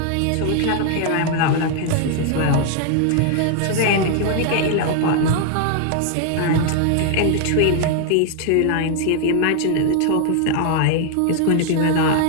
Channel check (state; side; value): different; both; correlation 0.00